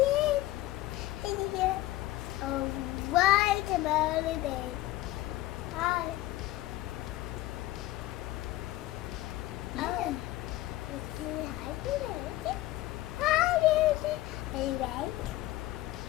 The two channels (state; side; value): quieter; right; 16.7 dB